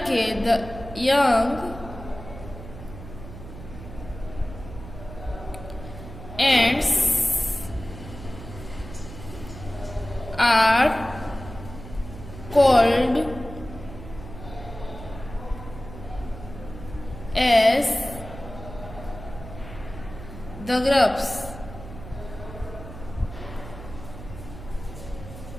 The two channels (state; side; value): noise; right; hum, 13 dB below the sound